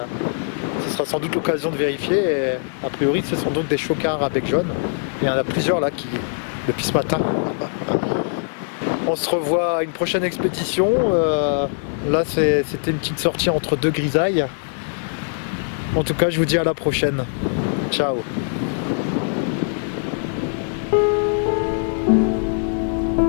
Ce sera sans doute l'occasion de vérifier. Et a priori ce sont donc des chocards à bec jaune. Et il y en a plusieurs là depuis ce matin. On se revoit à une prochaine expédition. Là c'était une petite sortie entre deux grisailles. En tout cas je vous dis à la prochaine. Ciao.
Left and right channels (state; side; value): silent; right; digital silence